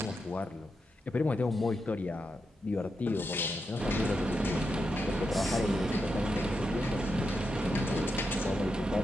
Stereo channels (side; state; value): both; normal; correlation 0.86